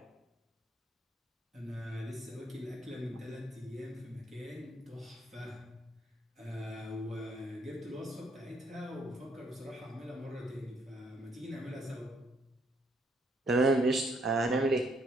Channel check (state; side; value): normal; both; correlation 0.71